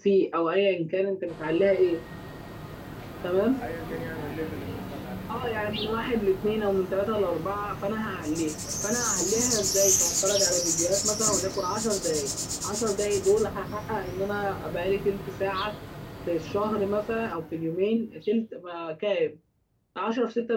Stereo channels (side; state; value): both; identical; correlation 1.00